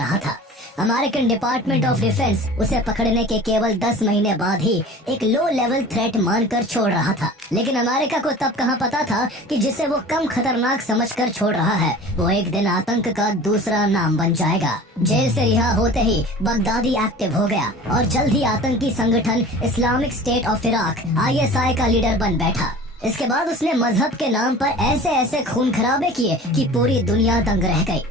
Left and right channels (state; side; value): normal; both; correlation 0.41